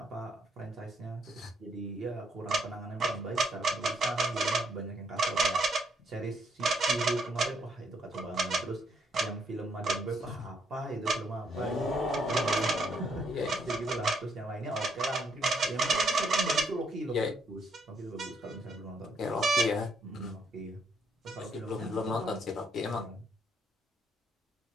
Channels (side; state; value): both; normal; correlation 0.71